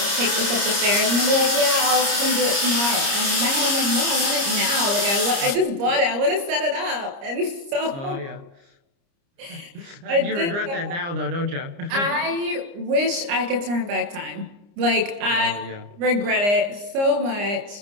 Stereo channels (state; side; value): late; left; 29 ms